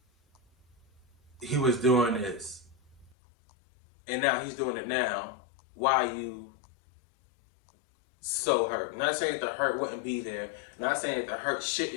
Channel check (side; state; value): right; drops out; at 3.2 s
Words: he was doing this and now he's doing it now, why are you so hurt? I'm not saying that the hurt wouldn't be there, I'm not saying that the hurt